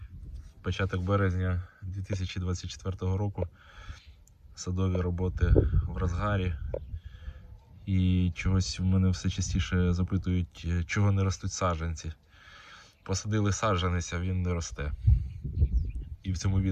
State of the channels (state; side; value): identical; both; correlation 1.00